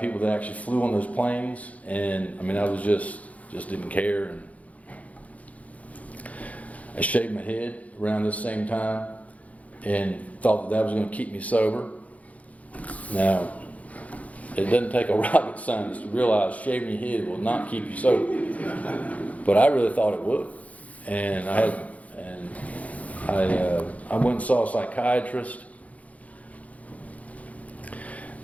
people that actually flew on those planes. And I mean, I was just didn't care. And I shaved my head around this same time and thought that was going to keep me sober. Now, it doesn't take a rocket scientist to realize shaving your head will not keep you sober. But I really thought it would. And I went and saw a psychiatrist.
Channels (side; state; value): right; late; 0.069 ms